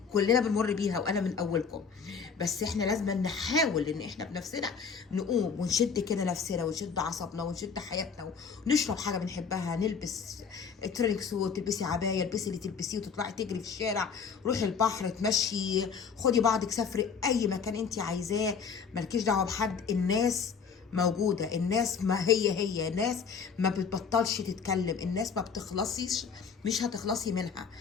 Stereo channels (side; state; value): right; quieter; 6.1 dB